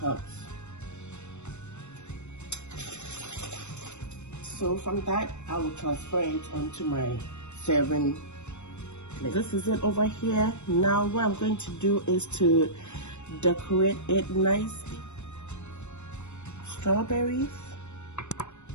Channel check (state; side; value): late; right; 0.82 ms